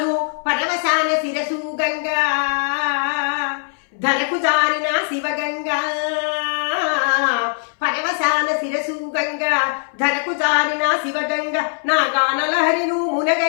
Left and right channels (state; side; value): silent; right; 62 dB below the other